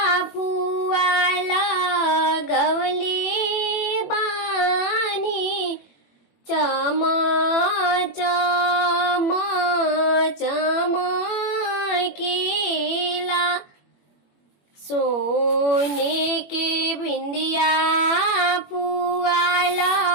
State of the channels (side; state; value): right; late; 21 ms